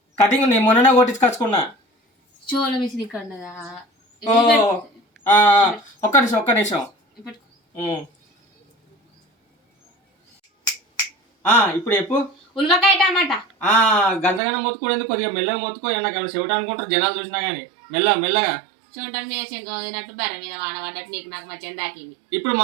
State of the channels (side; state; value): left; drops out; at 14.4 s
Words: కటింగ్ నేను మొన్ననే కొట్టించుకొచ్చుకున్నా. షోల మిషన్ ఇక్కడ ఉన్నదా? ఒక్క నిమిషం. ఇప్పుడు చెప్పు. ఉల్వకాయ టమాటా. గంటగానే మొత్తుకోలేదు, కొద్దిగా మెల్లగా మొత్తుకో. నాకు ఏమైనా చెవిట అనుకుంటారు జనాలు చూసినా గానీ. మెల్లగా చూడటానికి మీద శంక వదినట్టు బర్ర మీద వాన పడ్డట్టు నీకు నాకు మధ్య దాకింది. ఇప్పుడు